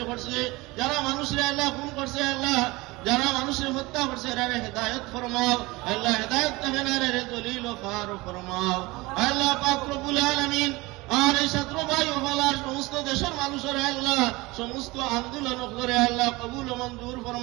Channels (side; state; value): left; quieter; 22.1 dB